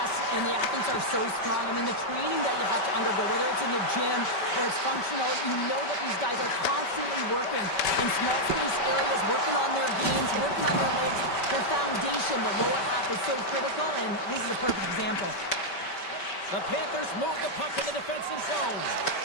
and the athletes are so strong. I mean, the training that you have to undergo, whether it's in the gym or it's functional, you know that these guys are constantly working in small space areas, working on their games, working on their legs. Their foundation, the lower half, is so critical, and this is a perfect example. The Panthers move the puck in the defensive zone.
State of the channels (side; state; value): right; late; 5.2 ms